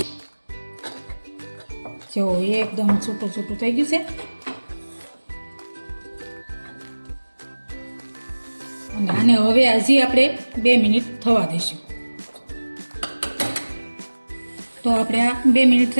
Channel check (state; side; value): inverted; both; correlation -1.00